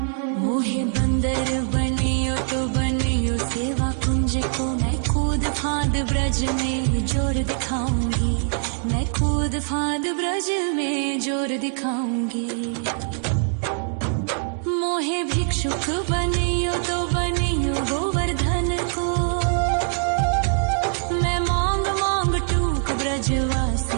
मोहे बंदर बनियो तो बनियो सेवा कुंज को। मैं कूद फांद ब्रज में जोर दिखाऊंगी। मैं कूद फांद ब्रज में जोर दिखाऊंगी। मोहे भिक्षुक बनियो तो बनियो गोवर्धन को। मैं मांग मांग टूक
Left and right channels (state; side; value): silent; left; digital silence